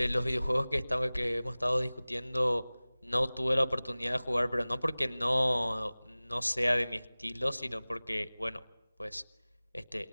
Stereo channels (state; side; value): inverted; both; correlation -0.99